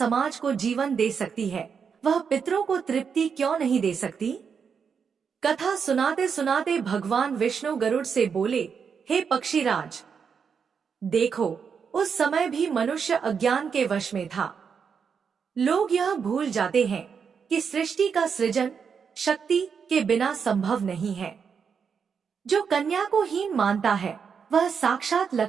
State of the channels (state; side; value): quieter; left; 6.4 dB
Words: को जीवन दे सकती है वह पितरों को तृप्ति क्यों नहीं दे सकती। कथा सुनाते सुनाते भगवान विष्णु गरुड़ से बोले, हे पक्षीराज, देखो, उस समय भी मनुष्य अज्ञान के वश में था। लोग यह भूल जाते हैं कि सृष्टि का सृजन शक्ति के बिना संभव नहीं है। जो कन्या को हीन मानता है वह साक्षात